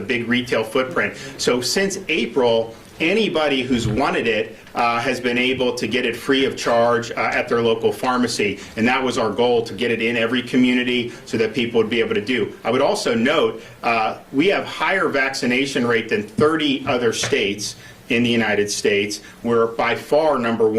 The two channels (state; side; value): identical; both; correlation 1.00